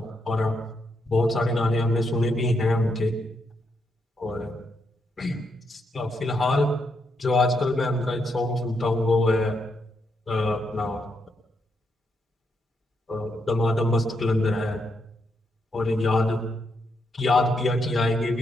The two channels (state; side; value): normal; both; correlation 0.79